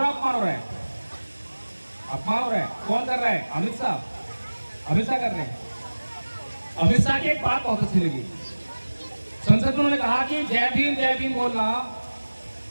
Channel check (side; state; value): both; inverted; correlation -1.00